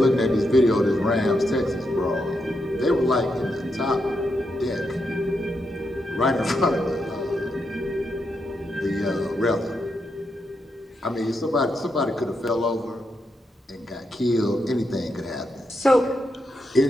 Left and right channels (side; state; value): both; normal; correlation 0.83